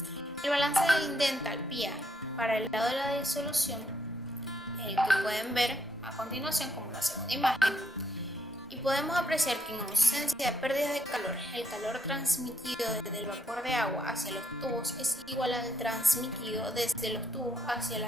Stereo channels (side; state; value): both; normal; correlation 0.75